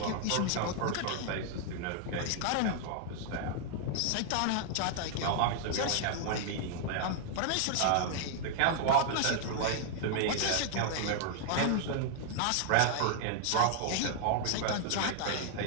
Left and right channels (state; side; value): different; both; correlation 0.00